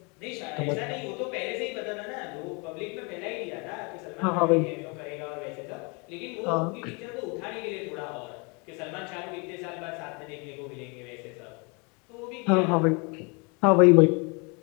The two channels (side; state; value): right; quieter; 31.5 dB